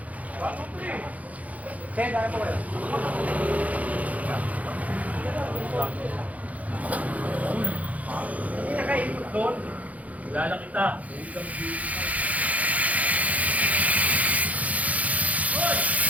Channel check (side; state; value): left; late; 0.071 ms